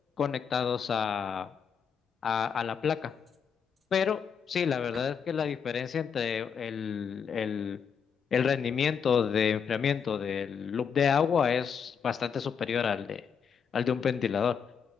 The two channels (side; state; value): right; quieter; 6.9 dB